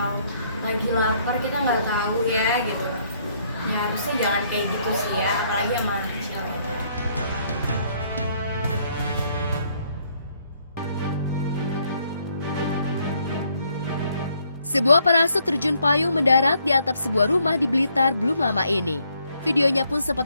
lagi lapar, kita nggak tahu ya gitu. Ya harusnya jangan kayak gitu sih ya, apalagi sama anak kecil. Sebuah parasut terjun payung mendarat di atap sebuah rumah di Blitar belum lama ini. Videonya pun sempat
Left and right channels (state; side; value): inverted; both; correlation -0.69